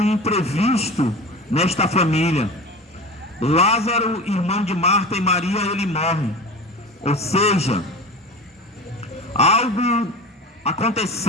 imprevisto nesta família. Lázaro, irmão de Marta e Maria, ele morre. Ou seja, algo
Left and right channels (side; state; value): both; normal; correlation 0.32